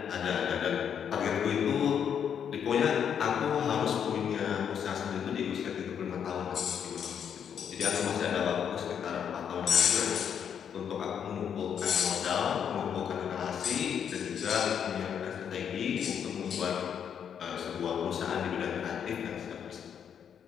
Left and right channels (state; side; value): quieter; right; 8.1 dB